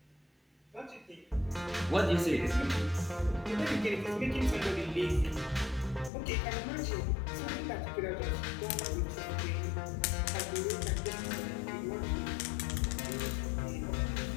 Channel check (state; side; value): drops out; right; at 6.1 s